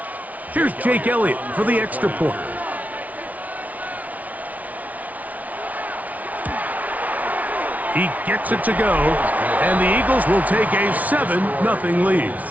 Here's Jake Elliott for the extra point. He gets it to go, and the Eagles will take a 7-0 lead.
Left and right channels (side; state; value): left; late; 0.072 ms